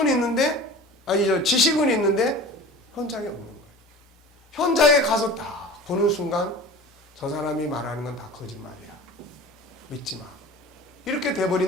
있는데, 지식은 있는데 현장이 없는 거예요. 현장에 가서 딱 보는 순간 저 사람이 말하는 건 다 거짓말이야. 믿지 마. 이렇게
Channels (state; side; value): normal; both; correlation 0.38